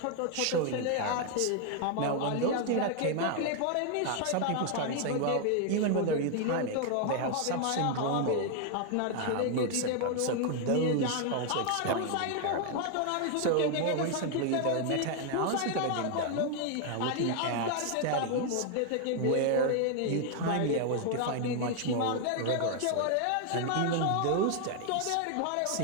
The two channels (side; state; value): both; different; correlation 0.00